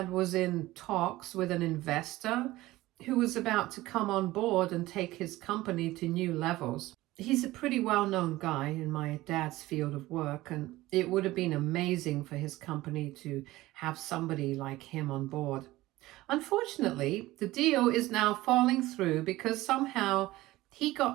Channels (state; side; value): quieter; left; 17.8 dB